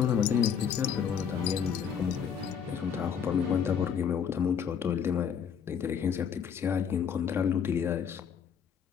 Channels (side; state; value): right; quieter; 7.5 dB